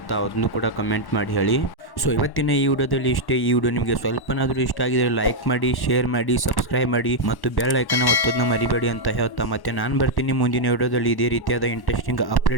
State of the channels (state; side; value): late; right; 1.1 ms